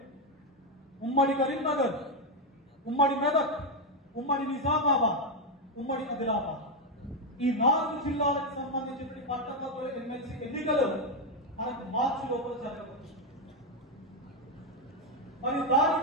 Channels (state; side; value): normal; both; correlation 0.05